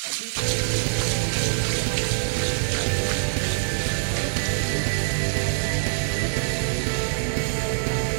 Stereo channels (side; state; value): left; silent; 55 dB below the other